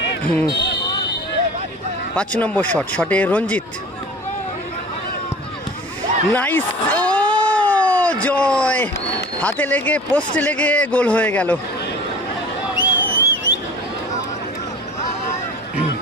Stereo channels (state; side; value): normal; both; correlation 0.41